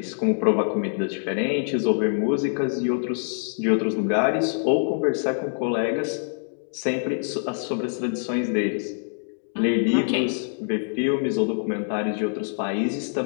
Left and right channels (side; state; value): right; silent; digital silence